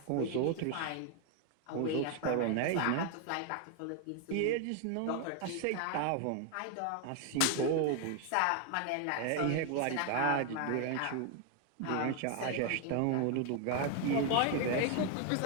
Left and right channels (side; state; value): both; different; correlation 0.00